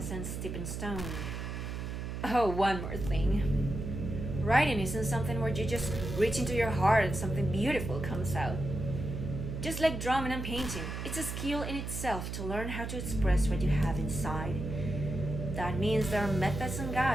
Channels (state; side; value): noise; right; hum, 5 dB below the sound